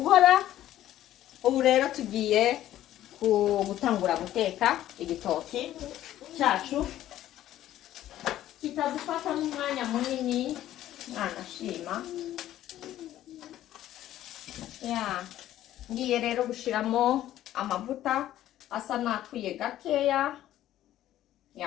Ubu rero tugiye gutangura guteka igitoki cyacu, kitadufata n'umwanya munini. Nashima ngiye rero gushiramo amavuta asa nakwiye gakeya.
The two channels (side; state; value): right; quieter; 13.1 dB